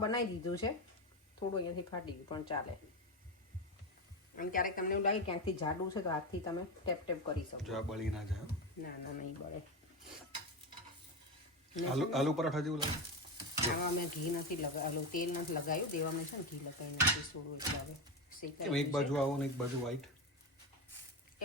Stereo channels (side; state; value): both; normal; correlation 0.16